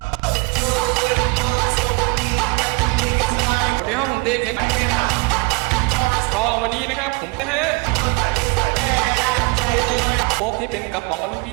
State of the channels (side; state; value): left; quieter; 28.0 dB